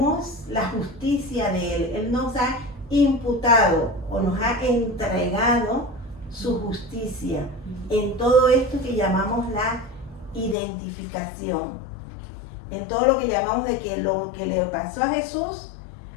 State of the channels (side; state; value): right; drops out; at 10.6 s